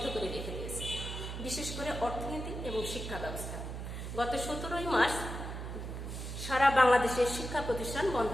করে রেখে দিয়েছে, বিশেষ করে অর্থনীতি এবং শিক্ষা ব্যবস্থা। গত 17 মার্চ সারা বাংলাদেশের শিক্ষা প্রতিষ্ঠান বন্ধ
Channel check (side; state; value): right; noise; hum, 6 dB below the sound